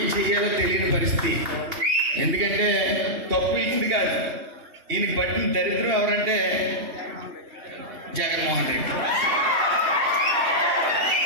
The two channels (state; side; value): late; left; 2.7 ms